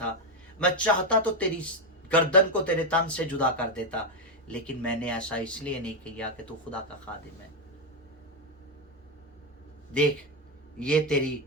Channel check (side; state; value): both; normal; correlation 0.06